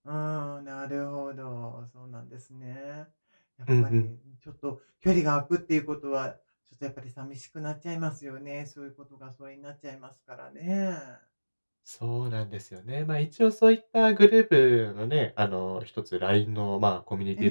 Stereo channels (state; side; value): inverted; both; correlation -1.00